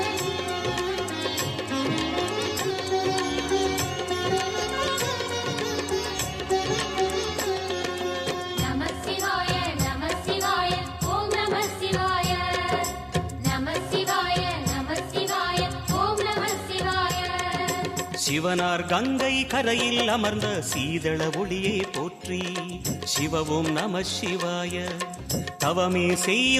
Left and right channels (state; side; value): identical; both; correlation 1.00